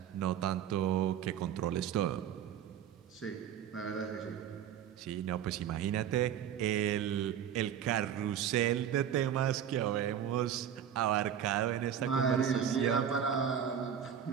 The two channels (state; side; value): quieter; left; 9.1 dB